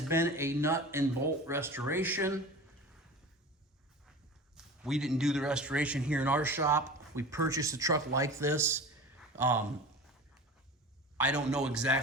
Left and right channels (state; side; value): normal; both; correlation 0.35